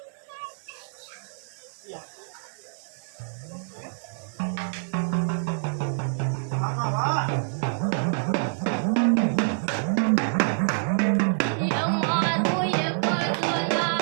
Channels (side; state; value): left; silent; digital silence